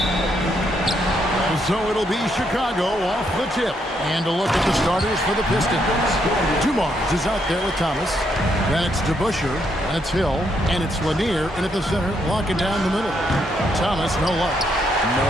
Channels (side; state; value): both; normal; correlation 0.75